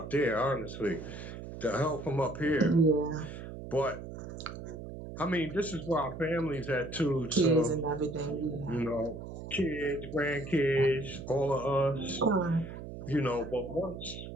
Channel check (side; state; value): right; noise; hum, 10 dB below the sound